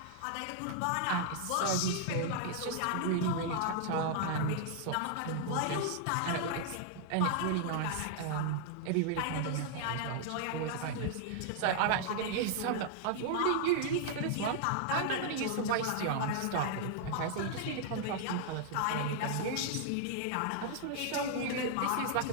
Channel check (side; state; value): both; different; correlation -0.01